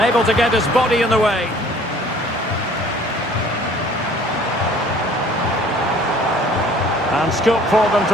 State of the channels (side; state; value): both; normal; correlation 0.53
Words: to get his body in the way. And scope for them